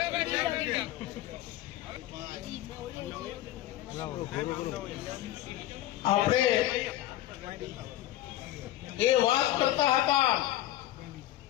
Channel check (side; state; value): right; quieter; 14.4 dB